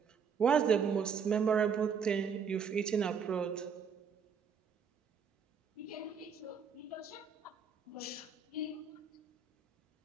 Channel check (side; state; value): left; quieter; 6.4 dB